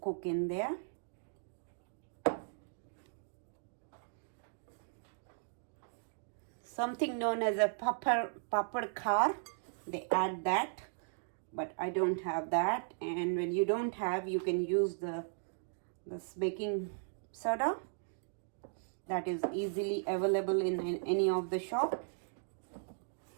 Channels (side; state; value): left; silent; digital silence